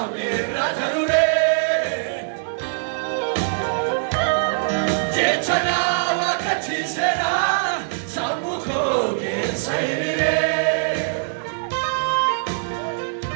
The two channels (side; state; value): left; silent; digital silence